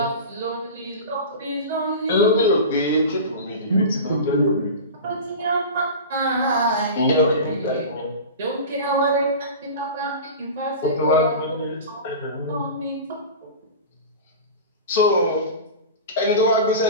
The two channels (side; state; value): both; inverted; correlation -0.31